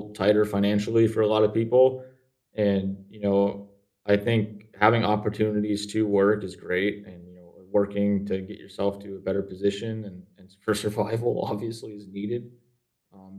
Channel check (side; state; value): both; identical; correlation 1.00